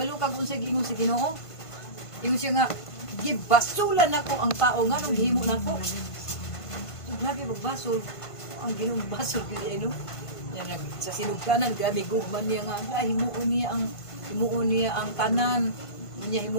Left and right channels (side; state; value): right; late; 1.5 ms